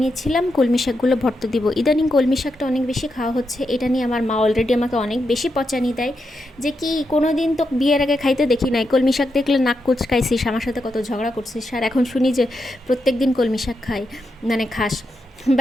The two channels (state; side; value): normal; both; correlation 0.85